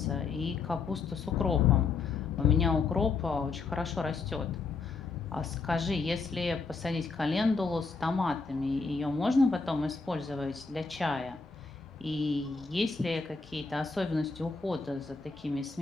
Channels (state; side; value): quieter; right; 4.5 dB